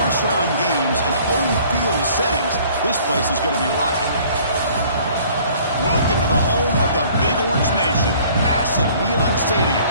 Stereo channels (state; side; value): inverted; both; correlation -0.54